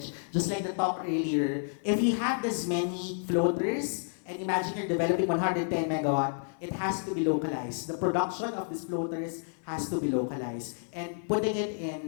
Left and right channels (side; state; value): right; silent; 58 dB below the other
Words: just like the talk earlier. If you have this many floaters, and imagine you're developing 110 megawatt, it has to be localized. The production of these floaters has to be localized. And putting it